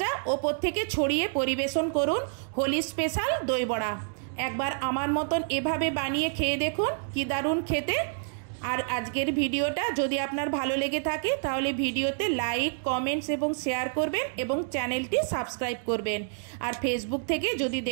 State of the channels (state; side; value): silent; left; digital silence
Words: ওপর থেকে ছড়িয়ে পরিবেশন করুন হোলি স্পেশাল দই বড়া। একবার আমার মতন এভাবে বানিয়ে খেয়ে দেখুন, কি দারুণ খেতে। আর আজকের ভিডিওটা যদি আপনার ভালো লেগে থাকে তাহলে ভিডিওতে লাইক, কমেন্টস এবং শেয়ার করবেন এবং চ্যানেলটি সাবস্ক্রাইব করবেন। আর ফেসবুক থেকে যদি